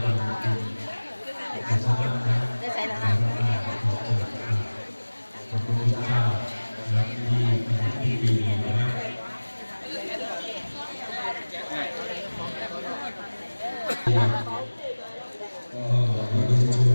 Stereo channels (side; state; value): both; inverted; correlation -1.00